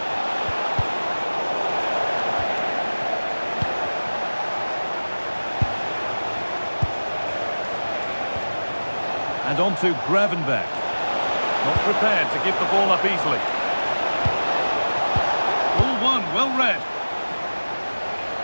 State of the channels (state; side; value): inverted; both; correlation -1.00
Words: And on to Gravenberch. Not prepared to give the ball up easily. Ball one, well read.